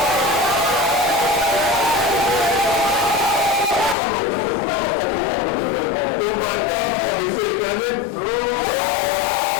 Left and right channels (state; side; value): drops out; right; at 4.0 s